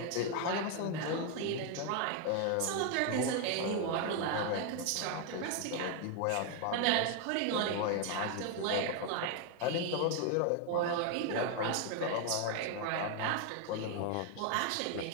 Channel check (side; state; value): both; different; correlation 0.01